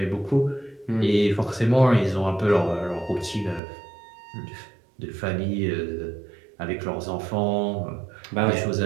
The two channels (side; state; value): left; drops out; at 3.6 s